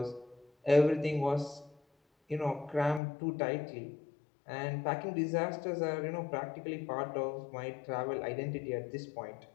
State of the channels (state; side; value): drops out; right; at 3.0 s